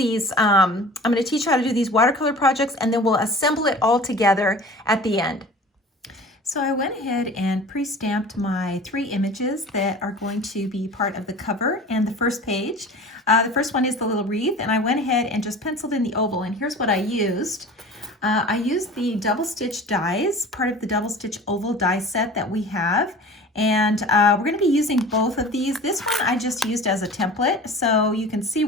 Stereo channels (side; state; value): both; normal; correlation 0.41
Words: I'm going to teach you how to do these watercolor projects, and then we'll assemble it all together at the end. So I went ahead and pre-stamped my 3 images that are going to be part of the cover and the first page. The first one is the little wreath, and I went ahead and just penciled in the oval, and here's what I used. I used the double stitch dies, part of the double stitch oval die set that we have. And we're going to be using both of these. This one I just used as a template, so you can see